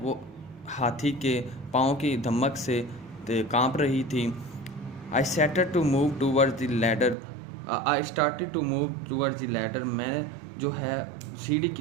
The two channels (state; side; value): drops out; left; at 7.2 s